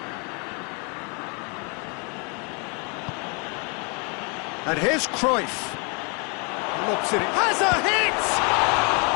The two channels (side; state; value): right; quieter; 34.2 dB